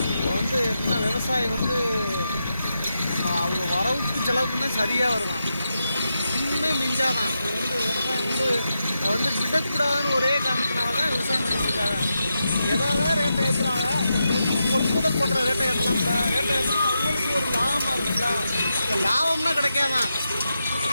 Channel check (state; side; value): inverted; both; correlation -0.87